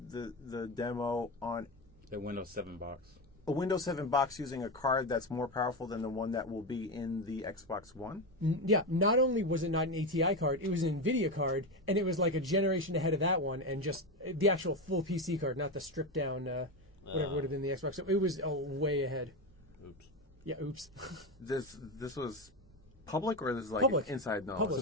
the demo on the Windows 7 box. a Windows 7 box using a card that's more powerful than the one that will be in the Xbox One? Yeah, not only was it not an ATI card, it was an NVIDIA card, and it was like a generation ahead of that one, and just the actual full PC card, not the stripped down, whatever would have been the Xbox. So it was way ahead. Oops. Yeah, oops. This was public, or this is like Public. inside knowledge? Public.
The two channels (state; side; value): normal; both; correlation 0.16